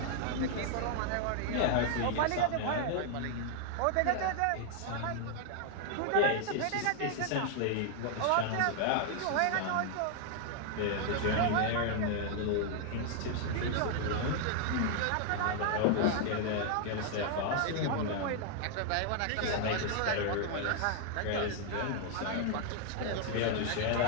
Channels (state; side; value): different; both; correlation 0.00